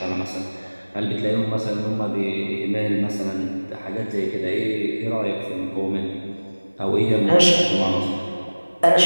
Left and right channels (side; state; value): both; inverted; correlation -1.00